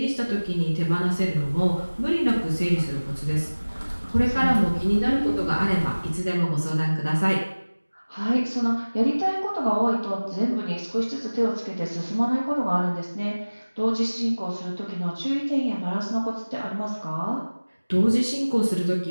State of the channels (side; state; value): both; inverted; correlation -1.00